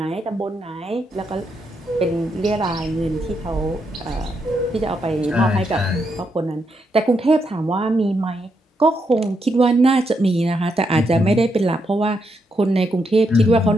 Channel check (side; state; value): both; normal; correlation 0.80